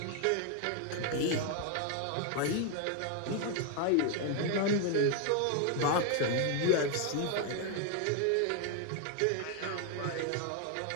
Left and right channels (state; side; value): different; both; correlation 0.01